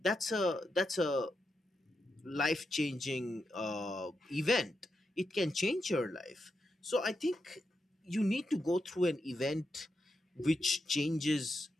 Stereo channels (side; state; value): both; normal; correlation 0.86